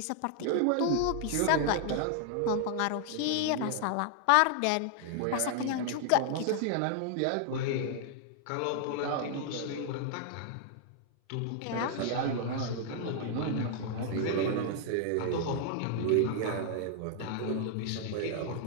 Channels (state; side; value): different; both; correlation -0.01